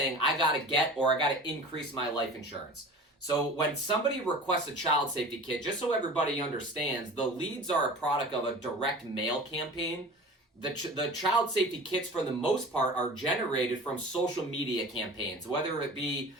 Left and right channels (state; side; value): normal; both; correlation 0.38